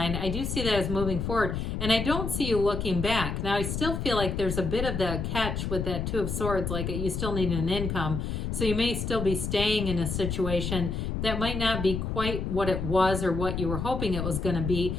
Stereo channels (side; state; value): left; noise; rumble, 3 dB below the sound